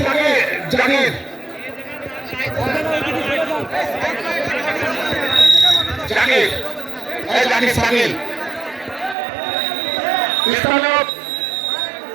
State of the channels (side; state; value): left; drops out; at 9.2 s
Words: জাকির জাকির এই জাকির সাকিল স্থানীয়